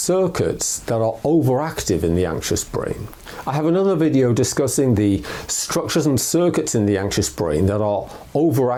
that are overactive in the anxious brain. I have another video discussing the structures and circuits in the anxious brain that are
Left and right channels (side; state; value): both; identical; correlation 1.00